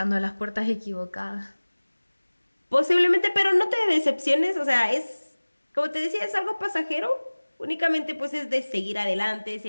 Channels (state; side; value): inverted; both; correlation -1.00